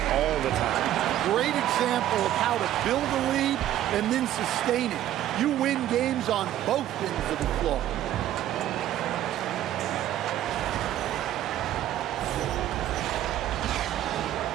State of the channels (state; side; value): quieter; left; 12.5 dB